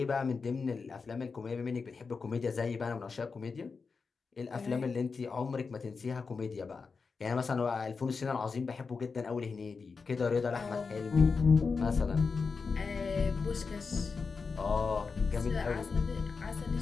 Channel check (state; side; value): quieter; right; 4.9 dB